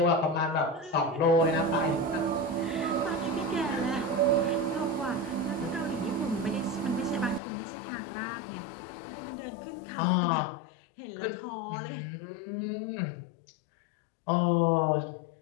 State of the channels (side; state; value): right; drops out; at 7.4 s